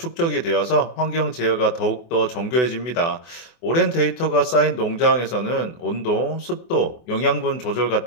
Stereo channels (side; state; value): right; late; 24 ms